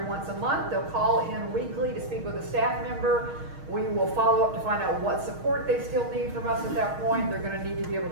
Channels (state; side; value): late; left; 6.4 ms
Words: once a month. They'll call in weekly to speak with a staff member. We will follow up to find out what support they still need from us at that point. They're going to need to be able